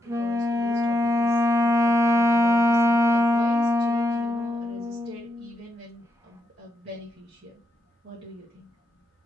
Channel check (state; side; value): normal; both; correlation 0.82